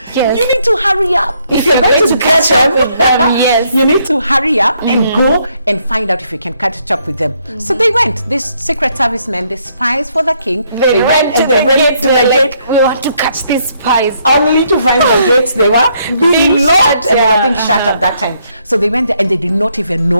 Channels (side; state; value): both; inverted; correlation -0.72